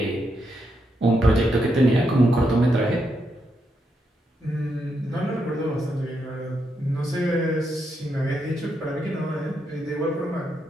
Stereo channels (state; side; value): normal; both; correlation 0.81